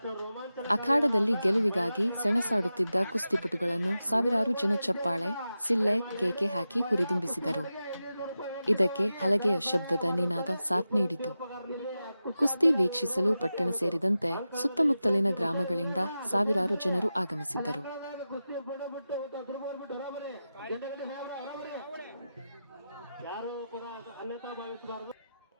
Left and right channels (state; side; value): inverted; both; correlation -0.92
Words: ಅಖಾಡದಲ್ಲಿ ಗೆಲುವಿಗಾಗಿ ಸೆಣಸಾಡುತ್ತಿದ್ದ ಕುಸ್ತಿಪಟುಗಳನ್ನು ಸಾವಿರಾರು ಜನ ಚಪ್ಪಾಳೆ, ಸಿಳ್ಳೆ, ಕೇಕೆ ಹಾಕಿ ಹುರಿದುಂಬಿಸಿದರು. ಇದಕ್ಕೆ ಹಲಗೆಯ ಶಬ್ದದ ನಿನಾದ ಸಾಥ್ ನೀಡಿತು. ಕುಸ್ತಿ ವೀಕ್ಷಿಸಲು ಪಟ್ಟಣ ಸೇರಿದಂತೆ ಸುತ್ತಮುತ್ತಲಿನ ಗ್ರಾಮಗಳಿಂದ ಸಾವಿರಾರು ಜನರು ಆಗಮಿಸಿದ್ದರು.